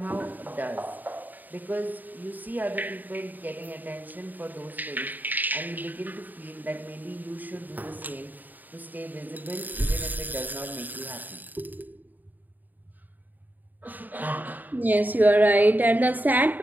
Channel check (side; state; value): left; late; 0.086 ms